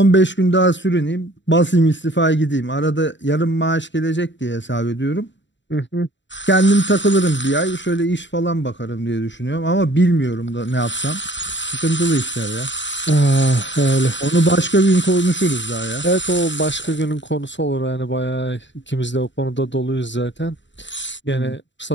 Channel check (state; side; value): late; right; 0.53 ms